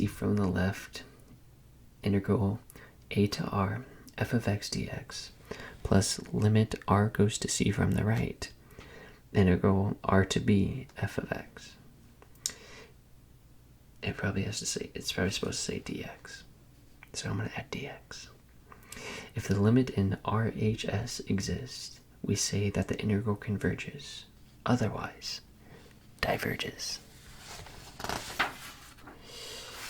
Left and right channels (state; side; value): identical; both; correlation 1.00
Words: from the left, integral a to r f of x dx plus limit r goes to c from the right, integral r to b f of x. It's probably supposed to say dx. So I'm going to add dx. If the limit in RHS exists, we say that the integral converges. Otherwise, diverges.